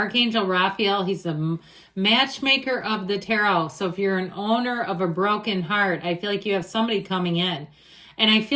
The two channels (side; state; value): both; identical; correlation 1.00